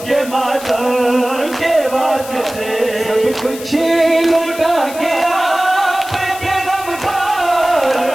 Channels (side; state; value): left; noise; hiss, 14 dB below the sound